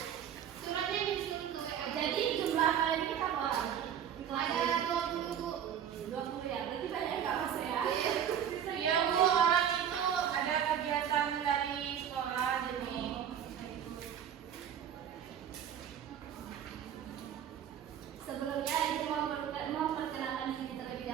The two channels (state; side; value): quieter; left; 9.2 dB